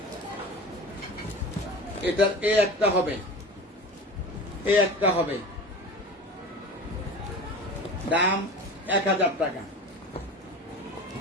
এটার এ একটা হবে, এ একটা হবে, দাম 1000 টাকা।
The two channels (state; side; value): normal; both; correlation 0.34